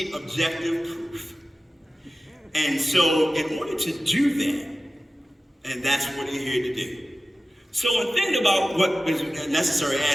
objective proof. And so in order to do that, and that's what we're here to do. So in thinking about what is necessary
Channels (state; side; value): normal; both; correlation 0.95